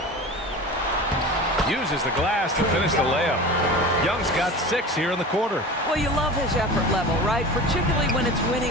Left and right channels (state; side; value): normal; both; correlation 0.33